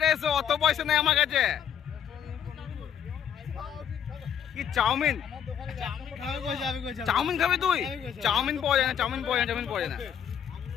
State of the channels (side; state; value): right; quieter; 8.7 dB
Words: এসে অত পয়সা নেই আমার কাছে। কি চাউমিন খাবি তুই? চাউমিন পাওয়া যায় না।